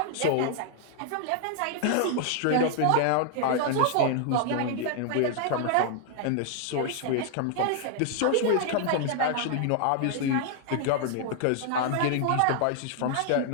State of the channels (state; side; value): different; both; correlation 0.00